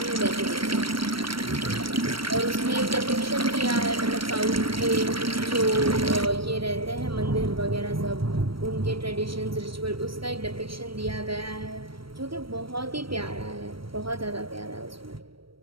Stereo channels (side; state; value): left; late; 0.75 ms